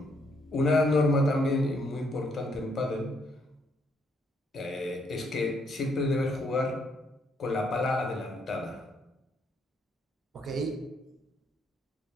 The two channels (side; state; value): both; normal; correlation 0.72